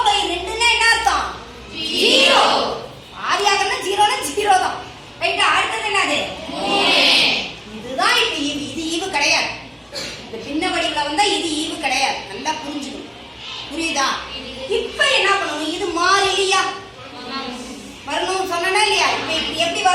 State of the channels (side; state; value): both; identical; correlation 1.00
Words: என்ன அர்த்தம்? 0. பாதி ஆக்குறதுனா 0னா 0 தான். ரைட்டா? அடுத்தது என்னது? 3. இதுதான் இப்ப